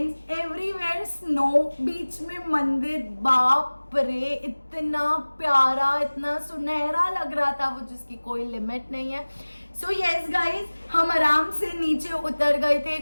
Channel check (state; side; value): inverted; both; correlation -1.00